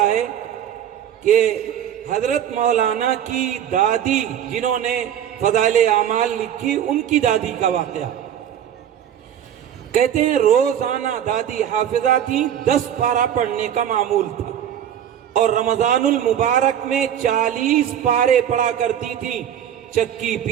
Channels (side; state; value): left; quieter; 9.9 dB